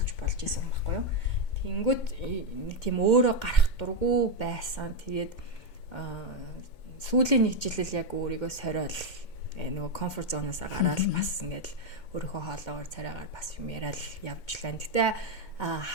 болж исэн хүн байхгүй юу. Тэнгүүт нэг тийм өөрөө гарах дурггүй байсан. Тэгээд сүүлийн нэг жилэл яг өөрийгөө сориол нөгөө комфорт зоноосаа гараад бас ингээд өөрийнхөө хоолоогоор царайгаар бас юм яриад явжлаа. Гэтэ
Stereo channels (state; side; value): late; right; 2.2 ms